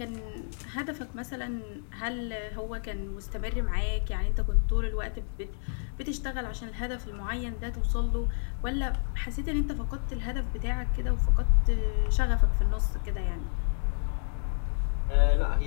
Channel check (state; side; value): silent; right; digital silence